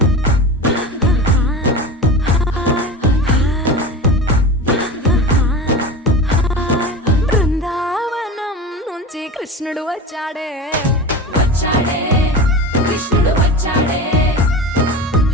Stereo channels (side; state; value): both; normal; correlation 0.29